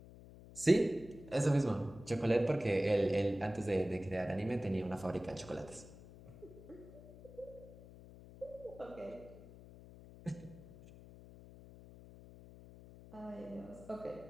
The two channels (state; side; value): noise; left; hum, 18 dB below the sound